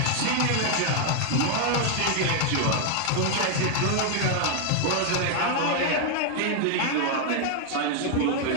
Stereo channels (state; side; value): different; both; correlation 0.00